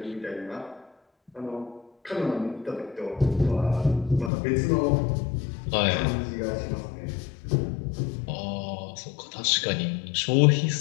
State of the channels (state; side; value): drops out; right; at 4.3 s